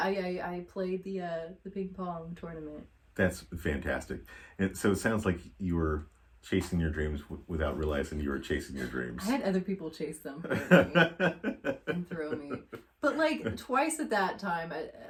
I played the ping pong tournament. That's fantastic. And so it sounds like you were chasing your dreams without realizing you were chasing your dreams. I had other people chase them for me and throw me. But like twice at that time, at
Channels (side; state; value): both; identical; correlation 1.00